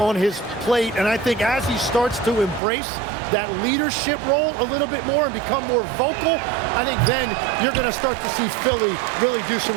his plate, and I think as he starts to embrace that leadership role a little bit more and become more vocal, I think then you're going to start to see Philly really do some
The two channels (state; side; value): drops out; left; at 2.6 s